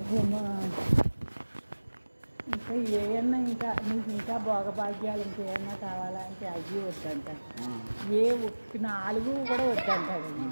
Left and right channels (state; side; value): inverted; both; correlation -1.00